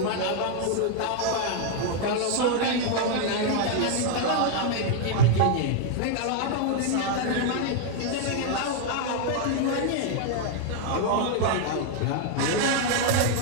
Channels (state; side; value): different; both; correlation 0.00